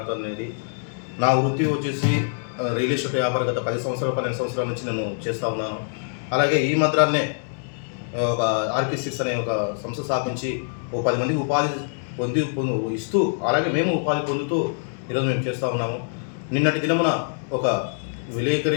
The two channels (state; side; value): silent; right; 62 dB below the other